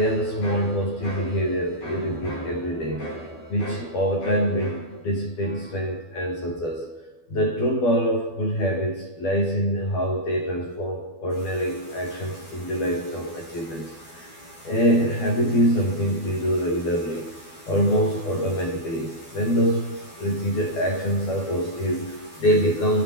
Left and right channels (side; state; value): right; late; 12 ms